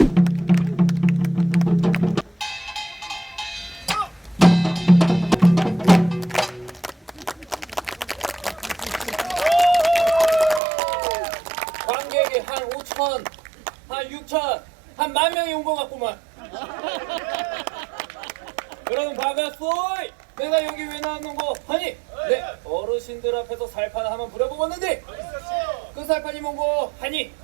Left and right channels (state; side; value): drops out; left; at 10.6 s